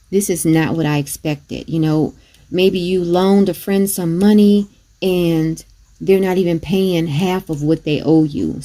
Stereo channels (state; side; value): identical; both; correlation 1.00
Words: this is not what I expected. You know, maybe you loaned a friend some money and they're not even paying half of what they owe you.